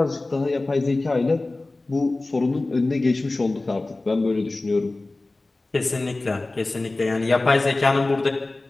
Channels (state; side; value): quieter; right; 3.0 dB